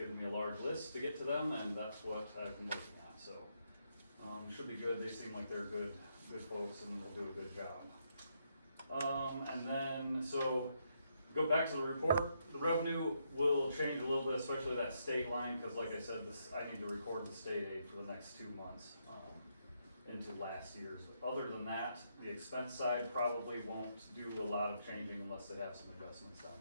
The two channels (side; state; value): both; inverted; correlation -0.77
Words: me a large list to get to them, and that's what I've been looking at, so. Should be good, they seem like they're good folks and will do a good job. And then, so, go back to the report, the revenue will change a little bit, especially that state line, because like I said, I need to record the state aid for the next 2 months into last year's. Other than that, the expense side probably won't do a lot of changing unless they have some adjustments down